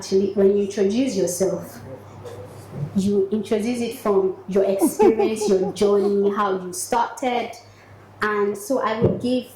when you introduce yourself, you introduce it from your experience, your journey, how you started. And so I will give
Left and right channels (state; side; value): identical; both; correlation 1.00